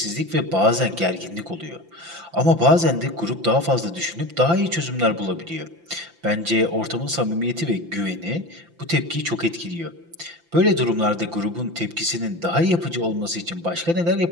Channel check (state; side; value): late; left; 5.9 ms